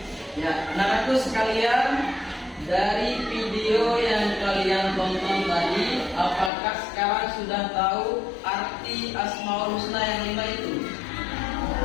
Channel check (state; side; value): drops out; right; at 6.5 s